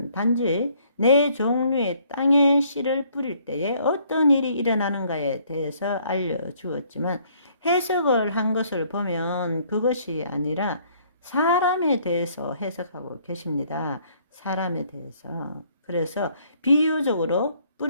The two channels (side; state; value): both; inverted; correlation -0.64